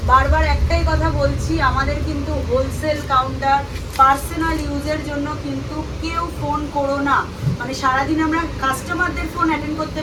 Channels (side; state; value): both; identical; correlation 1.00